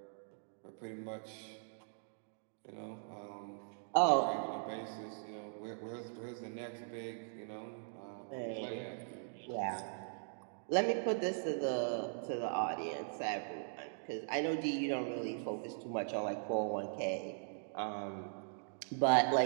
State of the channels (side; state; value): left; silent; digital silence